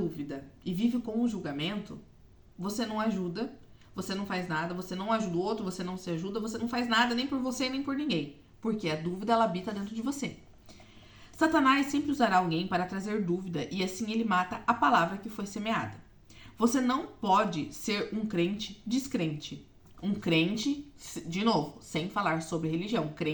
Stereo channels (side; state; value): both; identical; correlation 1.00